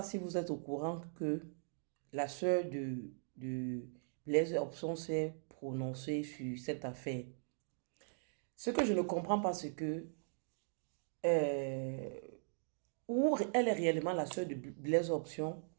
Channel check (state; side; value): silent; left; digital silence